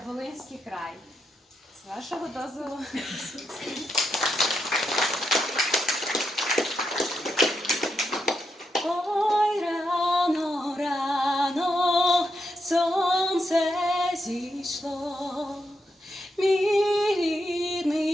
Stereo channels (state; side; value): normal; both; correlation 0.83